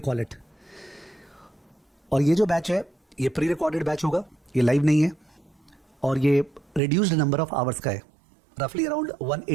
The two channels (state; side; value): drops out; left; at 6.8 s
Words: call it. और ये जो बैच है ये प्री रिकॉर्डेड बैच होगा, ये लाइव नहीं है, और ये रिड्यूस्ड नंबर ऑफ आवर्स का है, रफली around